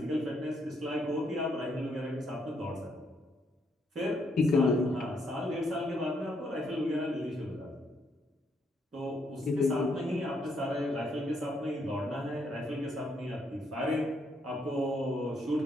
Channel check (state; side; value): normal; both; correlation 0.74